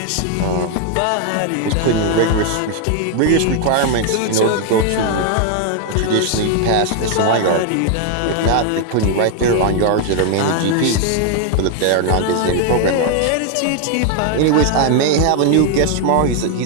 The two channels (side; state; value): both; different; correlation 0.00